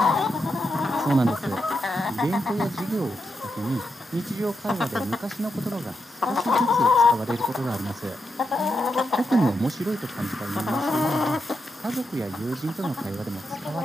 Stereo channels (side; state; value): both; normal; correlation 0.85